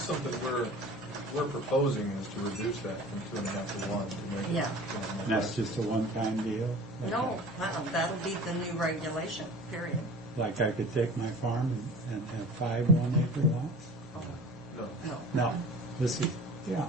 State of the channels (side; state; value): both; normal; correlation 0.41